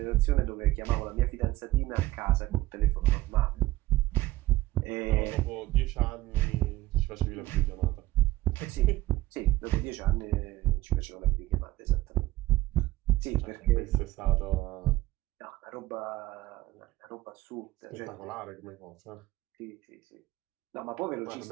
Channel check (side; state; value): left; quieter; 16.7 dB